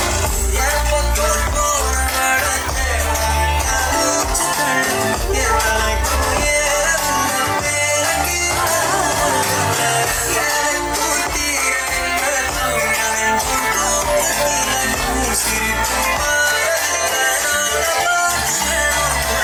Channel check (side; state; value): both; identical; correlation 1.00